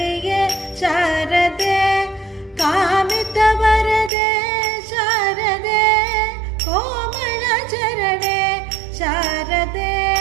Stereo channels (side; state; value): left; drops out; at 4.1 s